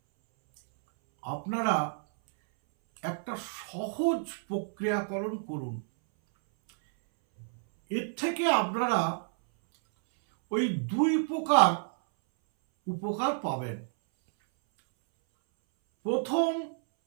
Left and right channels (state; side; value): silent; left; 58 dB below the other